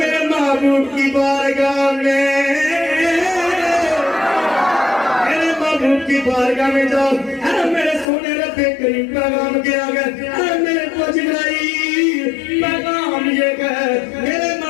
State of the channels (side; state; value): right; drops out; at 8.1 s